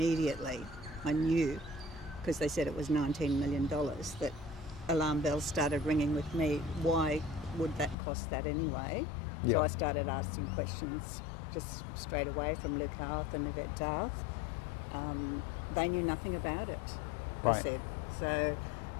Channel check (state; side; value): drops out; right; at 8.0 s